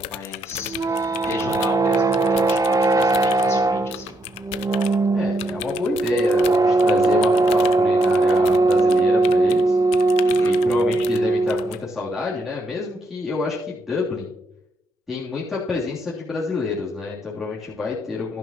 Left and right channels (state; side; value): normal; both; correlation 0.77